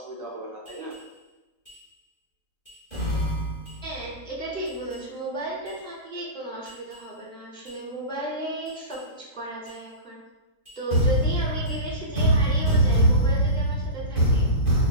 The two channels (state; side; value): late; right; 3.8 ms